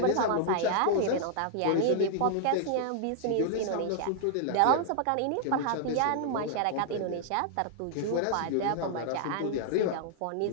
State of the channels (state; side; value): different; both; correlation -0.01